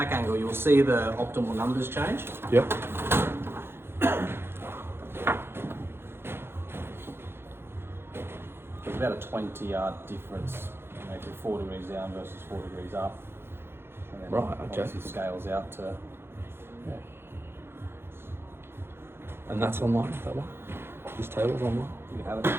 angle, you'll see the optimal numbers change. Yep. It's about a 20-yard difference, maybe 4 degrees down versus 4 degrees up. And then Right, okay. obviously scales out to. Yeah. And that's online, that one? This table's online? You can have it.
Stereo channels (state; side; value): late; left; 0.11 ms